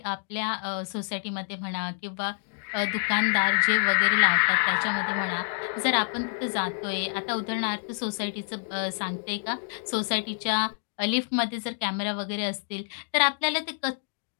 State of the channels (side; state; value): right; silent; 60 dB below the other